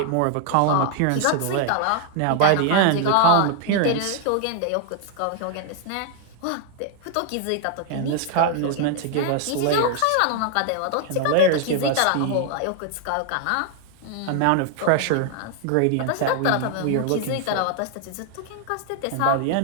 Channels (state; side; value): different; both; correlation 0.00